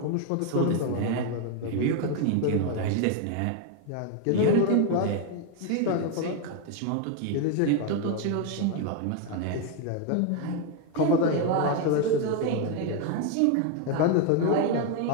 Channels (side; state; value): both; different; correlation 0.01